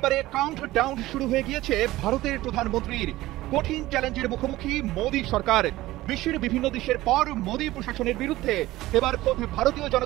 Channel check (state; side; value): quieter; left; 17.1 dB